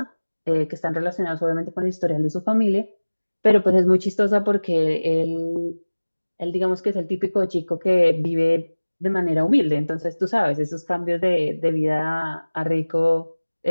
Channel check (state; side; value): inverted; both; correlation -1.00